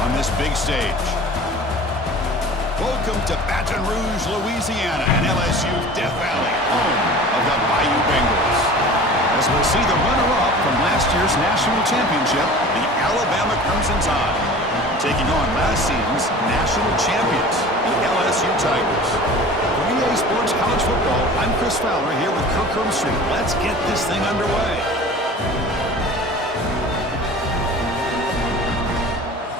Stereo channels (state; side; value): normal; both; correlation 0.41